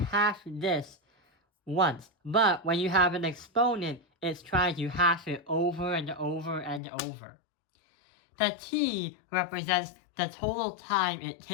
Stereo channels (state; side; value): drops out; right; at 6.8 s